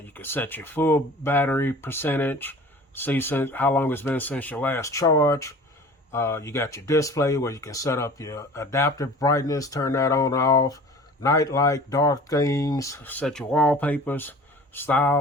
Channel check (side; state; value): both; normal; correlation 0.43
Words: you can set your full battery percentage. See how long it's been since your last charge. You got your display where you can set up your adaptive brightness, turn that on and off. Night light, dark themes, set your wallpapers,